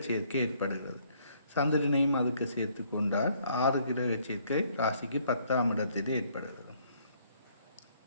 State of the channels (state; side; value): inverted; both; correlation -0.65